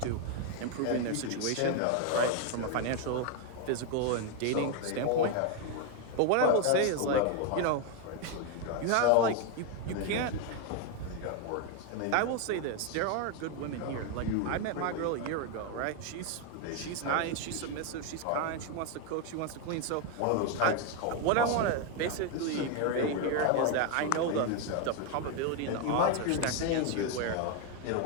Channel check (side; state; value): both; different; correlation 0.01